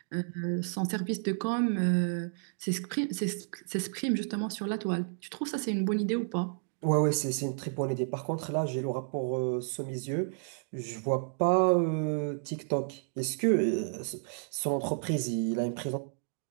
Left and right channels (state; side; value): silent; left; digital silence